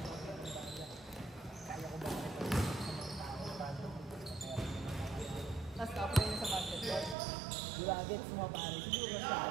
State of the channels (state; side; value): drops out; left; at 7.2 s